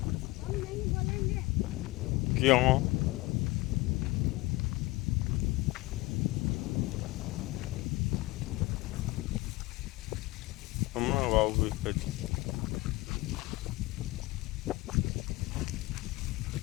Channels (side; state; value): right; quieter; 21.1 dB